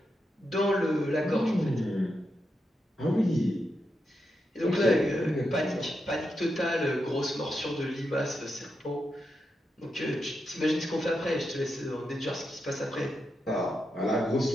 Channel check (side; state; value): both; normal; correlation 0.85